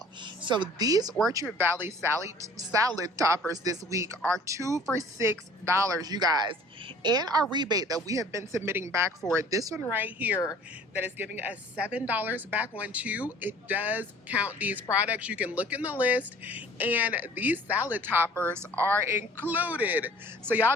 So these Orchard Valley salad toppers this week are 2 for $6, you guys. And our rebate that we have been submitting back for it, this one right here that is giving us $7 back on 2, it does count these products. You can look in the list and these salad toppers are included. So y'all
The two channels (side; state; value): both; normal; correlation 0.50